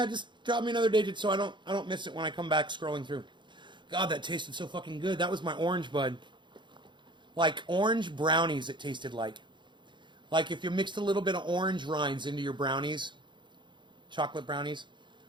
just drop me another digit so I don't miss it when I come back scrolling through. God, that tasted so fucking good. That was my orange bud. Like orange brownies it tasted like. Like if you mixed a little bit of orange rinds into your brownies, chocolate brownies.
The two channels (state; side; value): late; left; 0.23 ms